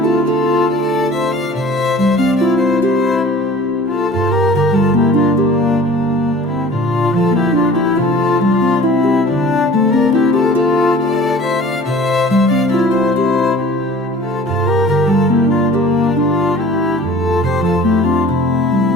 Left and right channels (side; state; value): both; normal; correlation 0.47